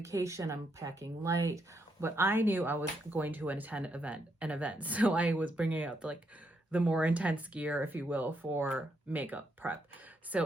I'm packing light, but I knew I was going to attend an event. So I was bringing out like the more intense gear, if you will, for makeup prep.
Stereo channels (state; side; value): normal; both; correlation 0.78